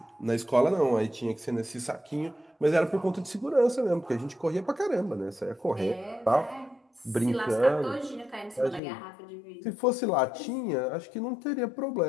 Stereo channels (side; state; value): right; drops out; at 8.8 s